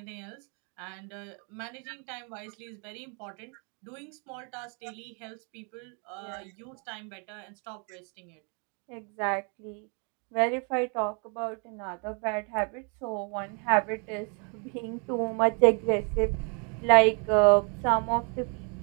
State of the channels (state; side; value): quieter; left; 36.8 dB